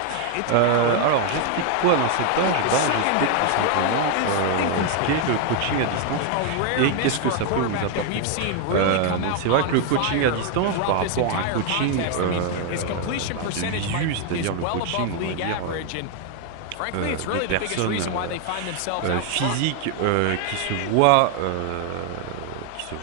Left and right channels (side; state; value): both; different; correlation 0.01